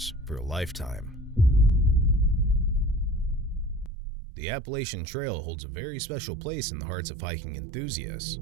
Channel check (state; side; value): drops out; left; at 3.9 s